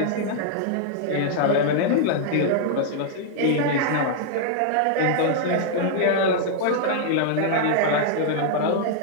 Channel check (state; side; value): different; both; correlation -0.01